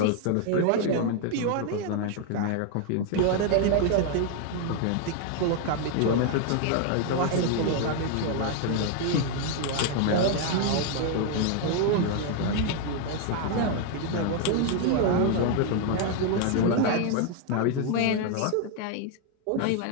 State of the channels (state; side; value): different; both; correlation 0.00